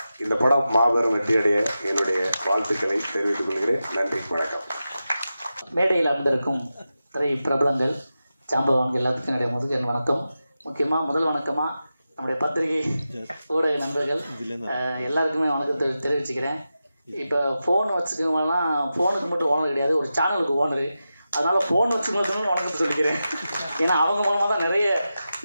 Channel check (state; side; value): inverted; both; correlation -0.92